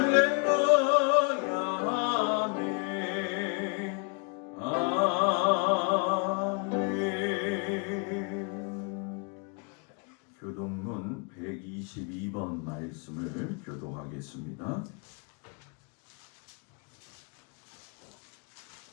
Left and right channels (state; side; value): quieter; right; 35.9 dB